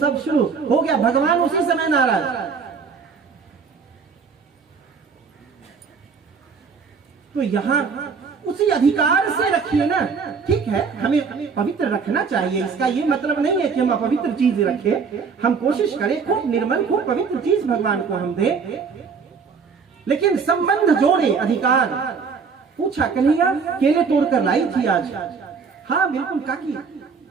शुरू हो गया। भगवान उसी समय नाराज। तो यहां उसी अधिकार से रखिए ना। ठीक है, हमें पवित्र रखना चाहिए, इसका ये मतलब नहीं है कि हम अपवित्र चीज रखें। हम कोशिश करें खूब निर्मल, खूब पवित्र चीज भगवान को हम दें, लेकिन संबंध जोड़े, अधिकार। पूछा, कन्हैया केले तोड़ कर लाई थी आज? हाँ बिल्कुल काकी,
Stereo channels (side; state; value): left; quieter; 5.6 dB